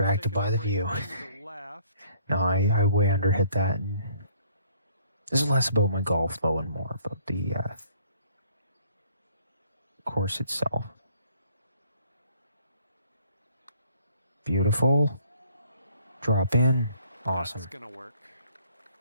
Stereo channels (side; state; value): both; inverted; correlation -0.61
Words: by the view. No, I way underhit that. And this is less about my golf though and more about the course itself. Beautiful. Drop in. Awesome. That's gonna work.